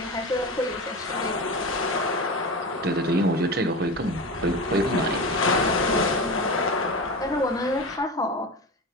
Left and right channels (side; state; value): both; normal; correlation 0.26